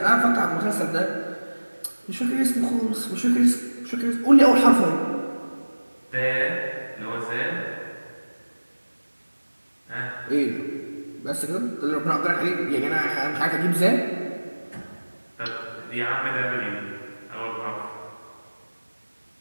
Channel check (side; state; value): both; inverted; correlation -1.00